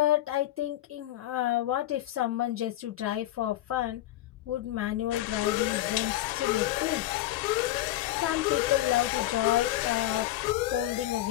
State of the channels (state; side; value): quieter; right; 14.6 dB